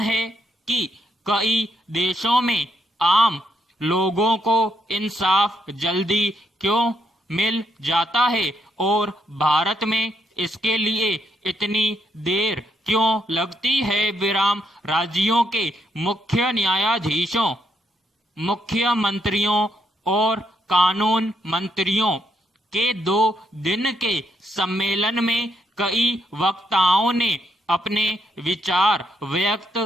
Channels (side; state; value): both; normal; correlation 0.75